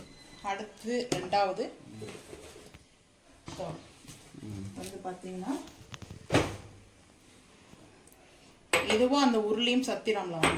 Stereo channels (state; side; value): identical; both; correlation 1.00